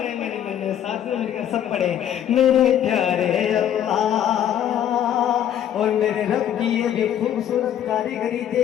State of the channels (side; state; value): right; quieter; 10.3 dB